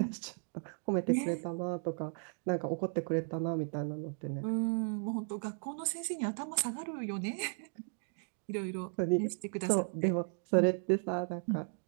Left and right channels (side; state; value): left; silent; 54 dB below the other